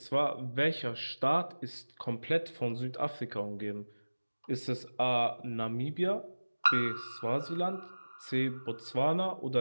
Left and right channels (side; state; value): both; inverted; correlation -1.00